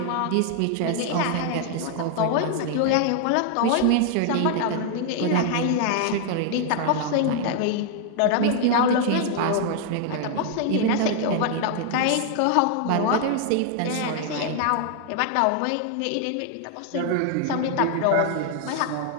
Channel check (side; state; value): both; different; correlation 0.00